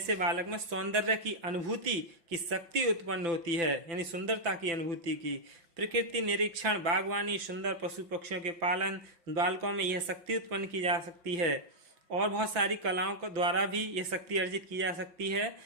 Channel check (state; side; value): late; left; 5.9 ms